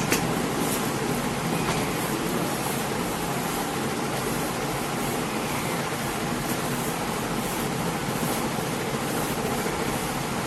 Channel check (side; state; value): both; identical; correlation 1.00